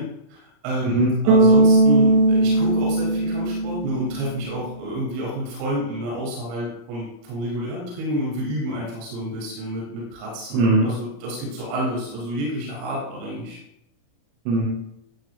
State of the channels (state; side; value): late; left; 34 ms